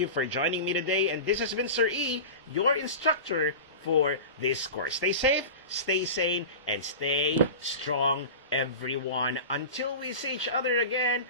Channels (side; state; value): both; inverted; correlation -0.30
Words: for joining me today, and this has been Sir E, your instructor for this course. Stay safe, stay sane, and stay strong, everyone. Until we see each other again,